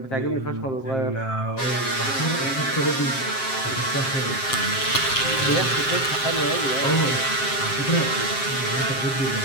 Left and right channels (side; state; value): right; late; 7.6 ms